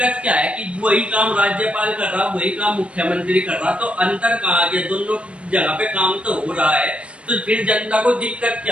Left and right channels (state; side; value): late; left; 0.060 ms